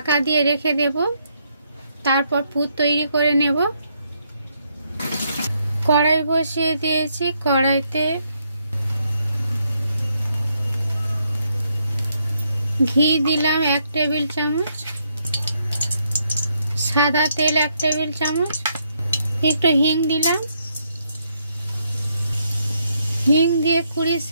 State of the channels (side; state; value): both; inverted; correlation -0.75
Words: দিয়ে রেখে দেব। তারপর পুর তৈরি করে নেব। কড়াই বসিয়ে দিয়েছি। কড়াইতে ঘি দিলাম 1 টেবিল চামচ, সাদা তেল 1 টেবিল চামচ, একটু হিং দিলাম। হিং দিয়ে 20